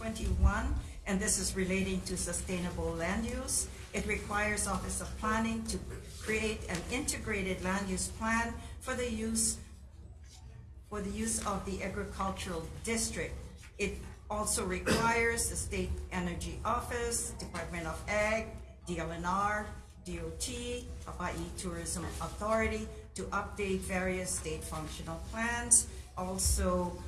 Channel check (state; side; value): identical; both; correlation 1.00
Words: and this is relating to sustainable land use. It requires Office of Planning to create an integrated land use plan for the use of the agricultural district. It also requires the State Energy Office, Department of Ag, DLNR, DOT, Hawaii Tourism Authority to update various state functional plans. Also